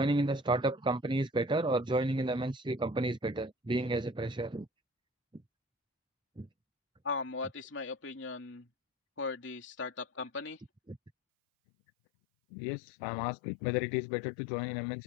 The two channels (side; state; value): right; drops out; at 11.1 s